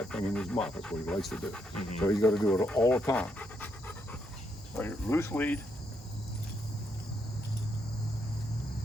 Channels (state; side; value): normal; both; correlation 0.77